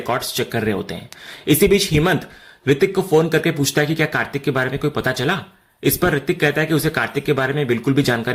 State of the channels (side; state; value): both; identical; correlation 1.00